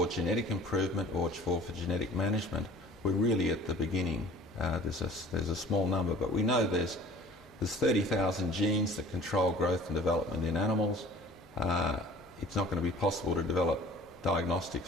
genetic improvement or for genetic management, we're really at the beginning. There's a small number, but we know there's 30,000 genes that control growth and development in animals. It's not going to be possible to develop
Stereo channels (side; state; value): both; normal; correlation 0.48